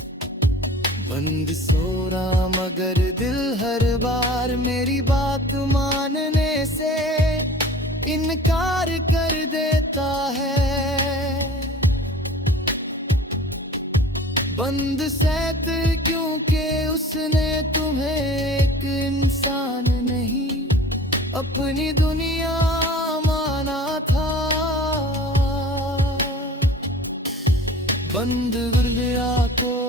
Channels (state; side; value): normal; both; correlation 0.43